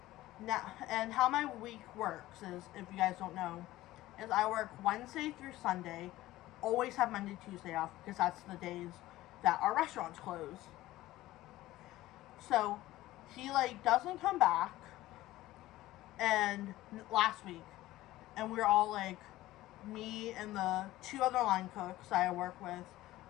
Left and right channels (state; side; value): quieter; right; 16.4 dB